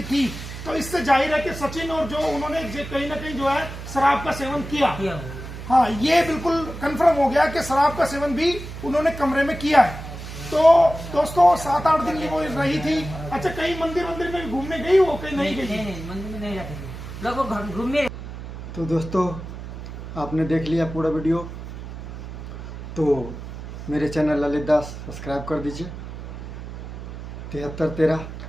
थी। तो इससे जाहिर है कि सचिन और जो उन्होंने कहीं ना कहीं जो है शराब का सेवन किया। हाँ, ये बिल्कुल कंफर्म हो गया कि शराब का सेवन भी उन्होंने कमरे में किया है। तो दोस्तों 7-8 दिन वो रही थी। अच्छा, कहीं मंदिर में भी घूमने गई हो? कहीं नहीं गई? नहीं, मंदिर में नहीं जाते थे लोग, घूमने। तो दोस्तों आपने देख लिया पूरा वीडियो, तो मेरे चैनल ललित दास सब्सक्राइब कर दीजिए 7313,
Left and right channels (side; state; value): right; noise; hum, 10 dB below the sound